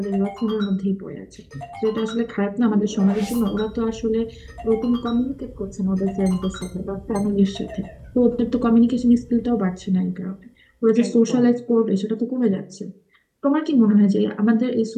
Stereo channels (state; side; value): identical; both; correlation 1.00